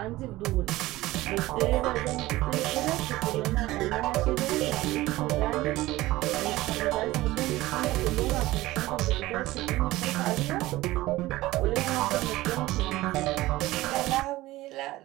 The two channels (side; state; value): left; quieter; 17.8 dB